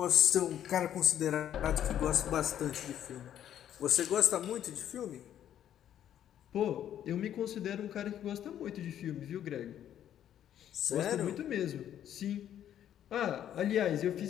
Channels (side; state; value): right; quieter; 10.6 dB